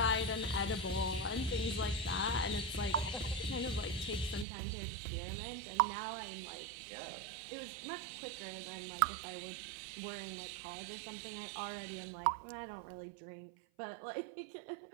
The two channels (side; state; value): left; drops out; at 4.5 s